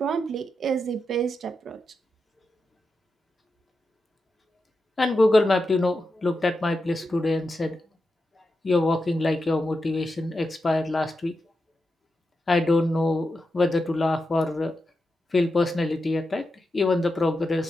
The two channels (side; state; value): both; normal; correlation 0.88